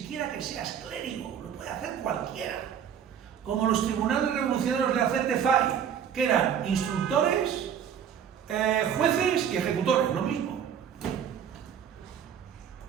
que seas clérigo, lo puede hacer cualquiera. Como los tribunales revolucionarios de Acete Fay, que eran instructores, jueces y ejecutores, lo mismo.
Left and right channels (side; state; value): left; quieter; 8.5 dB